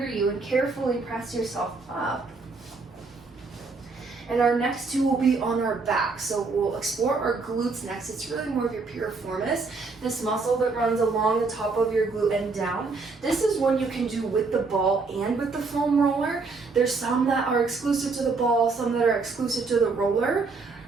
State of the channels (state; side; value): quieter; left; 4.1 dB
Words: you and carefully press yourself up. And our next two will be on our back. So we'll explore our glutes next. It's really more of your piriformis, this muscle that runs along the top of your glute and down. This is one you can do with the ball and with the foam roller. There's some that are exclusive to the ball, some that are exclusive to the roller.